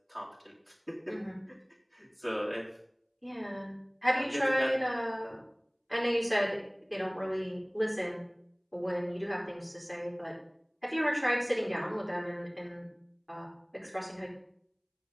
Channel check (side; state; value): both; identical; correlation 1.00